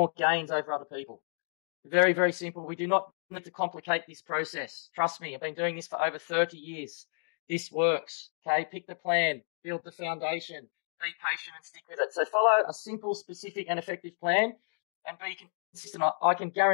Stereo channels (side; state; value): right; silent; digital silence